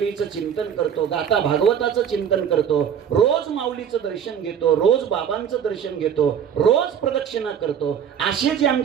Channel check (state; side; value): quieter; left; 8.3 dB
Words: चिंतन करतो, गाथा भागवताचं चिंतन करतो, रोज माऊलीचं दर्शन घेतो, रोज बाबांचं दर्शन घेतो, रोज प्रदक्षिणा करतो, असे जे